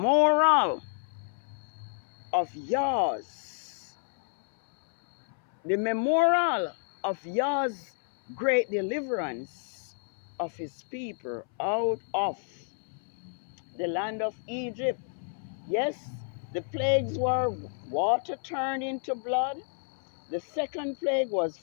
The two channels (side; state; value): right; silent; 58 dB below the other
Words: of Yah's. The memorial of Yah's great deliverance of his people out of the land of Egypt. Yes, the plagues were water turned into blood. The second plague was